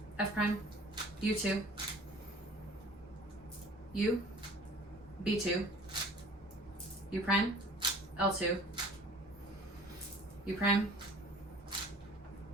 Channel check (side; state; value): both; normal; correlation 0.48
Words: F prime. U2. U. B2. U prime. L2. U prime.